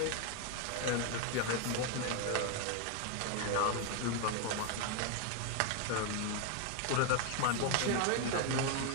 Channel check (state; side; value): different; both; correlation 0.01